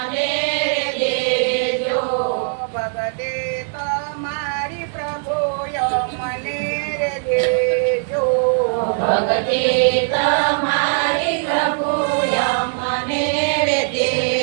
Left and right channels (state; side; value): silent; left; 66 dB below the other